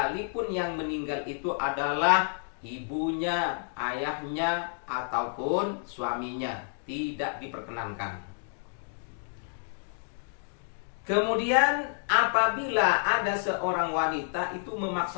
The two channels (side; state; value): right; silent; digital silence